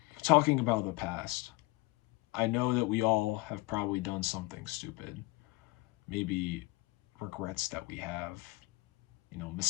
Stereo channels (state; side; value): quieter; right; 21.3 dB